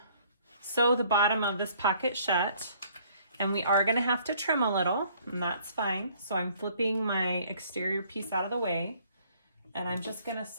sew the bottom of this pocket shut, and we are going to have to trim a little, and that's fine. So I'm flipping my exterior piece out of the way, and I'm just going to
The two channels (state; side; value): inverted; both; correlation -0.60